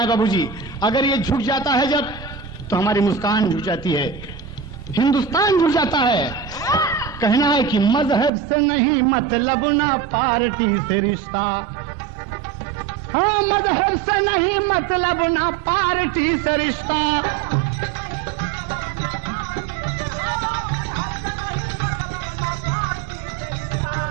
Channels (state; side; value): drops out; left; at 8.3 s